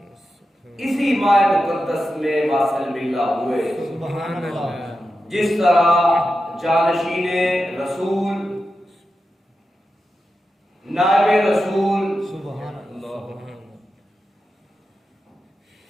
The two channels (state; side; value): normal; both; correlation 0.90